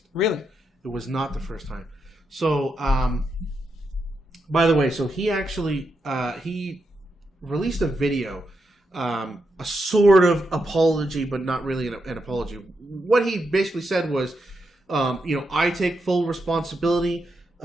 Really? It was not the first time. So, by the way, so he actually, he released a video, a sort of apology, but not really an apology. What he basically said was, I take full responsibility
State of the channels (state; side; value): normal; both; correlation 0.84